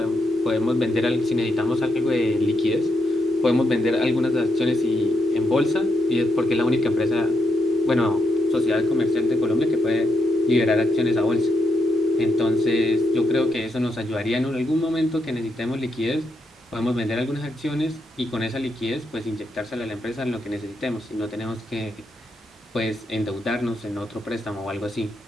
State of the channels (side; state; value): both; normal; correlation 0.81